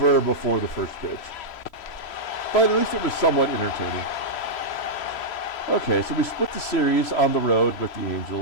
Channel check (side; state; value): right; late; 3.0 ms